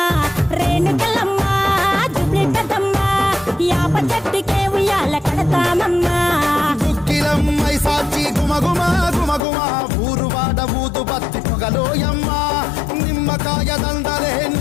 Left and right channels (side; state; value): right; drops out; at 9.4 s